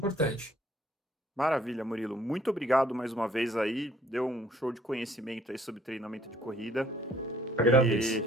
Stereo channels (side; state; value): both; normal; correlation 0.61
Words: Maravilha, Murilo. Muito obrigado mais uma vez aí. Deu um show de conhecimento aí sobre treinamento de corrida. Agradeço.